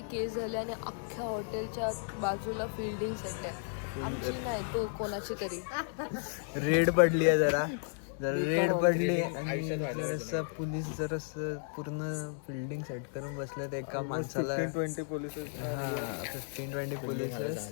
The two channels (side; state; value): right; silent; digital silence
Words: केस झाले आणि अख्ख्या हॉटेलच्या बाजूला फिल्डिंग सेट आहे. नाही तो कोणाची तरी रेड पडली आहे जरा रेड पडली आणि जरासं पोलीस जरासं पूर्ण बिल्डिंग सेट करून बसलेत एका माणसाला 15-20 पोलीस 15-20 पोलीस